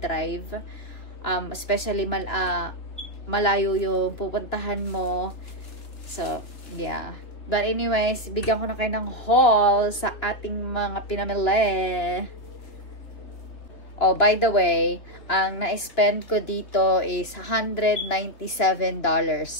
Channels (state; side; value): late; right; 3.1 ms